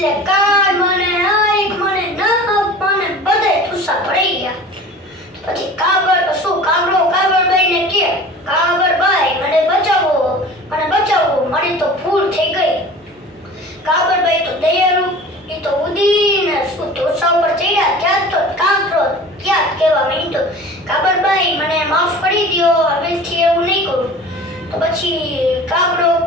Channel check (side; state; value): both; normal; correlation 0.40